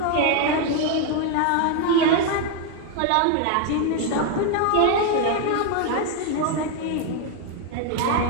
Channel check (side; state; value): both; different; correlation 0.01